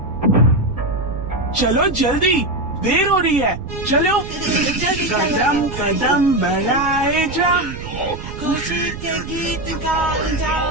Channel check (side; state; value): right; noise; rumble, 10 dB below the sound